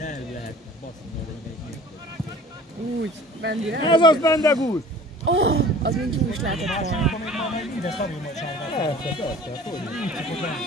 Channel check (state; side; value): normal; both; correlation 0.46